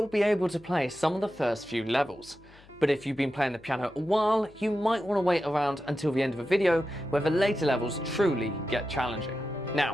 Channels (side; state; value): left; noise; hum, 25 dB below the sound